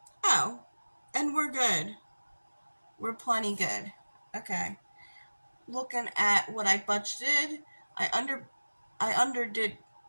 Oh, and we're good. We're plenty good. Okay. Looking at what I budgeted, I underdid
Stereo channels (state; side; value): inverted; both; correlation -1.00